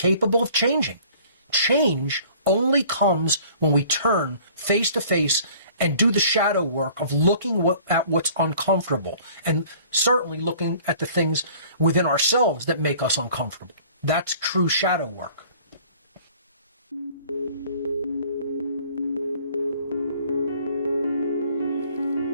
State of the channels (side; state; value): both; inverted; correlation -0.51